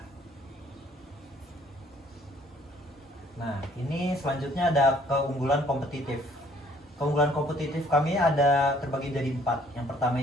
Nah, ini selanjutnya ada keunggulan kompetitif. Keunggulan kompetitif kami ada terbagi jadi 4. Yang pertama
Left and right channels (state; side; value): normal; both; correlation 0.60